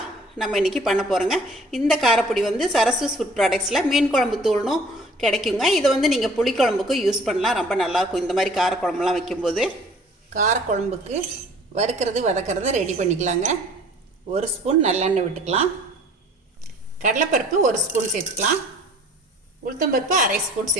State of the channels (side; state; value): both; normal; correlation 0.52